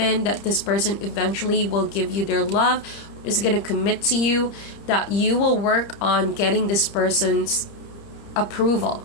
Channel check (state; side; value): late; right; 30 ms